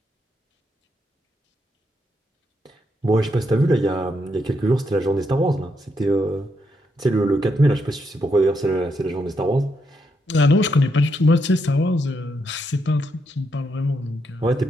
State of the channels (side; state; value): both; normal; correlation 0.80